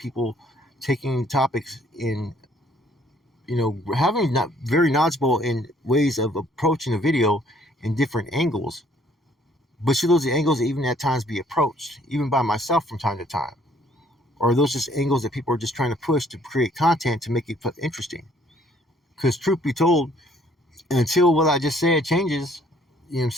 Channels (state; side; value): normal; both; correlation 0.62